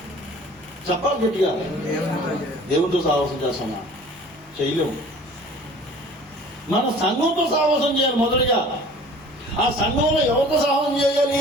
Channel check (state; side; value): normal; both; correlation 0.47